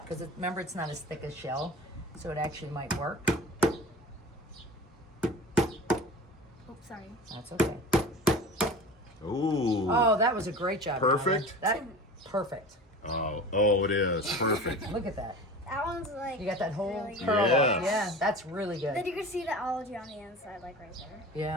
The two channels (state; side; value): normal; both; correlation 0.36